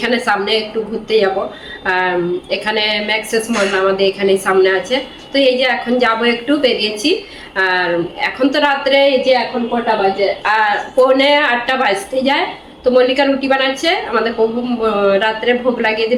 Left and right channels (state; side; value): identical; both; correlation 1.00